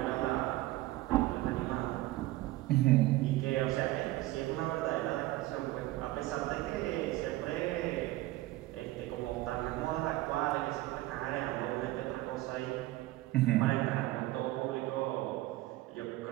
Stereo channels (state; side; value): quieter; left; 17.6 dB